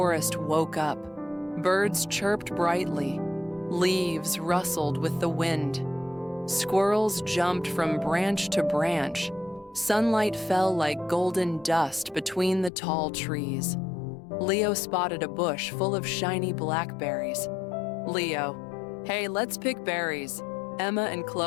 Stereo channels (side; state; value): right; drops out; at 12.7 s